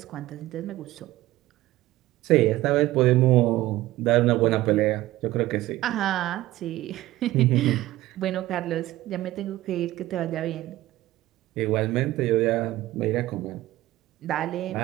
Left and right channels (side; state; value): left; quieter; 16.5 dB